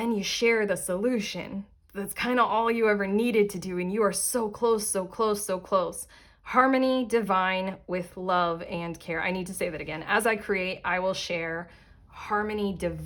you share the solution. That's kind of all you ever needed to do. And you are so close, so close, so close. Harmony divine with love and care. I need to say that again. As I create, I will share. Harmony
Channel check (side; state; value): both; identical; correlation 1.00